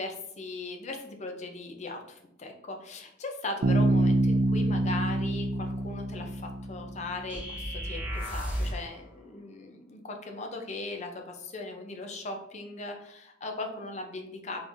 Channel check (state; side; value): normal; both; correlation 0.71